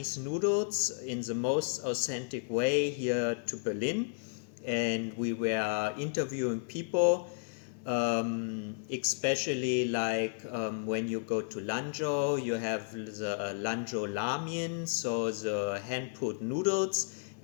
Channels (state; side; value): silent; right; 56 dB below the other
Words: noodles in the most authentic way here to Berlin. And we were interviewing people, especially like when you go to Lanzhou, you have the Lanzhou Ramen, so the hand-pulled noodles,